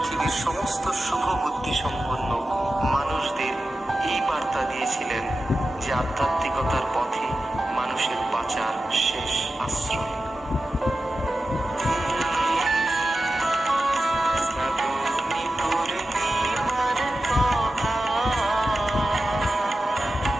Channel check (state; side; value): normal; both; correlation 0.93